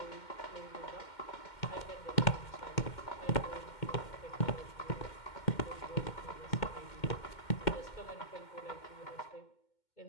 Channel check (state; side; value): late; right; 2.1 ms